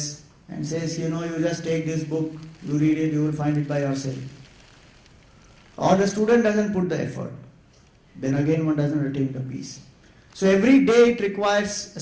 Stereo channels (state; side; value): identical; both; correlation 1.00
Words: and says, you just take this book, you read it, you will find it by yourself. Or the student doesn't put the effort, then again one doesn't attain the peace. So every day it requires a